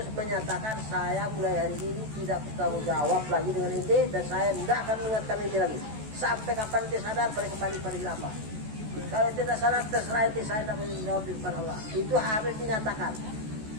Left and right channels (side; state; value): left; late; 14 ms